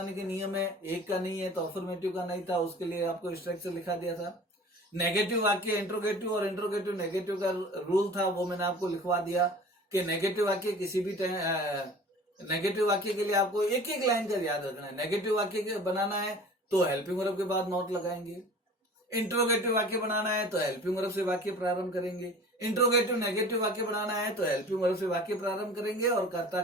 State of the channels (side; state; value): both; normal; correlation 0.43